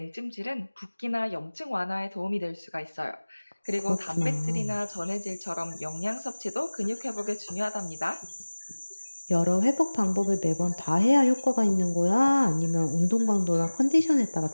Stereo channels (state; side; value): inverted; both; correlation -1.00